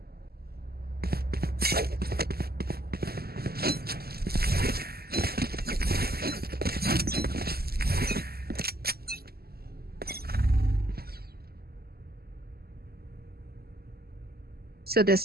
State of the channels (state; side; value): late; left; 0.45 ms